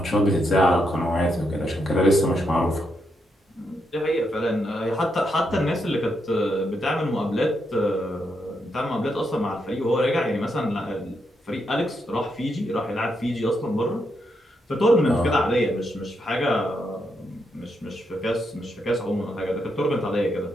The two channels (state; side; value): normal; both; correlation 0.81